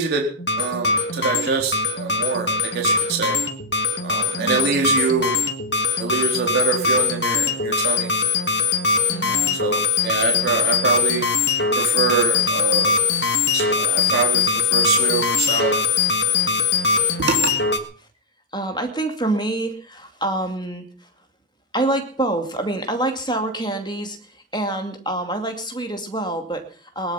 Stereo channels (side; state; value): both; normal; correlation -0.06